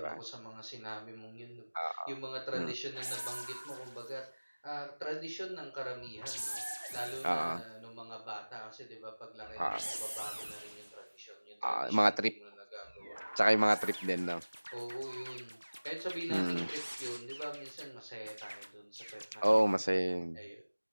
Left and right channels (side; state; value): both; inverted; correlation -1.00